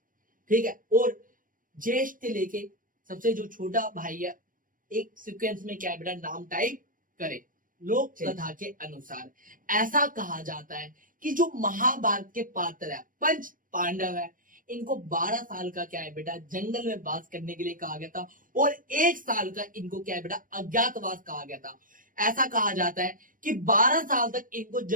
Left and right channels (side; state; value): left; late; 0.40 ms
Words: ठीक है। और ज्येष्ठ से लेके सबसे जो छोटा भाई है, एक सीक्वेंस में क्या है बेटा, नाम टाइप करें। लोक कथा के अनुसार ऐसा कहा जाता है कि जो महाभारत के पात्र है 5 पांडव है, इनको 12 साल का क्या है बेटा, जंगल में वास करने के लिए कहा गया था और 1 साल का इनको क्या है बेटा, अज्ञातवास कहा गया था। ऐसा कहा जाता है कि 12 साल तक इनको